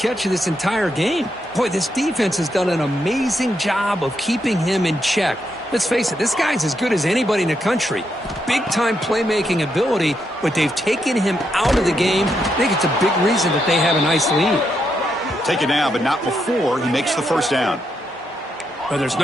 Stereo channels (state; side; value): normal; both; correlation 0.80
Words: of this entire game. Boy, this defense has done an amazing job of keeping him in check. Let's face it, this guy's as good as anybody in the country. Big-time playmaking ability, but they've taken him out of the game. I think it's a big reason that they have a nice lead. Take it now, but not before he makes the first down. Well, there's